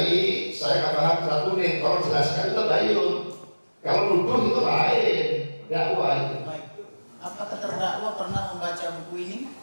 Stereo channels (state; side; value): inverted; both; correlation -1.00